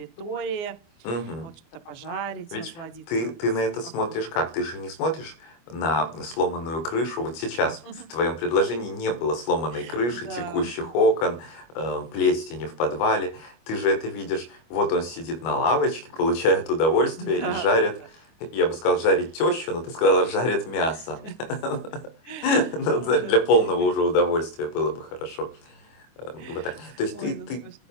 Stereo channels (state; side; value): late; right; 25 ms